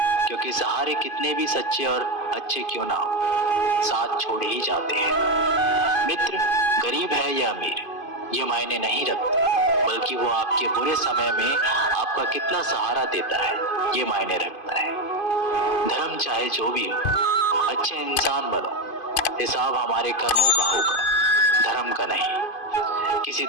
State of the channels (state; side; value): late; right; 2.5 ms